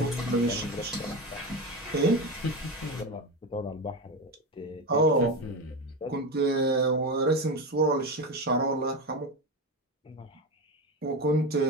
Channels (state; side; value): normal; both; correlation 0.19